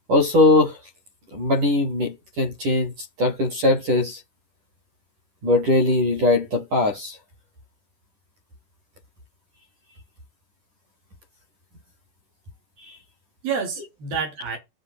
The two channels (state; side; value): late; left; 10 ms